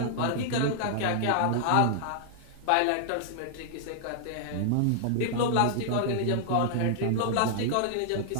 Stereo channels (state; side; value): different; both; correlation -0.01